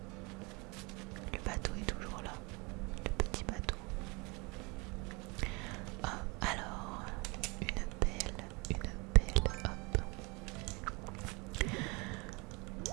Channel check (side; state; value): left; quieter; 28.1 dB